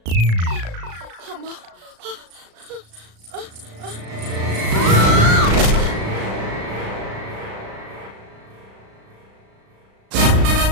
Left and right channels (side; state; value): left; late; 36 ms